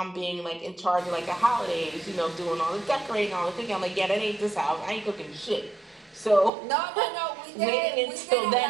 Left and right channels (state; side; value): drops out; left; at 6.5 s